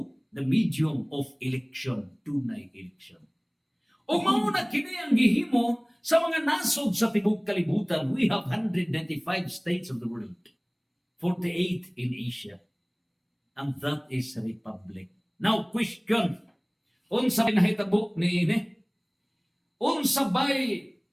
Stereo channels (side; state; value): both; identical; correlation 1.00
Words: the medium of election, tunay election. O mauna kini ang gihimo sa mga nasod sa tibok kalibutan. We have 195 states of the world, 48 in Asia, and that is a republic. Now, question, unsa nahitabo ni ini? Unsa bay